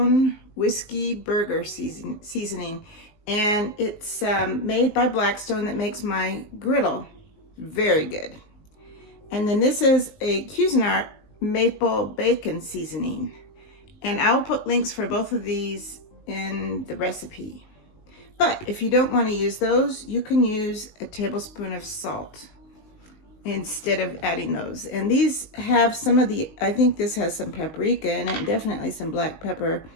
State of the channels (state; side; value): late; right; 19 ms